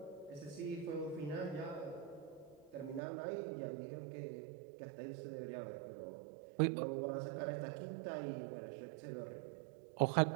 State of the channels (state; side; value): drops out; left; at 3.0 s